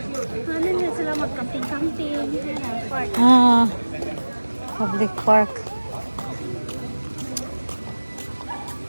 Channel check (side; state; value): both; inverted; correlation -1.00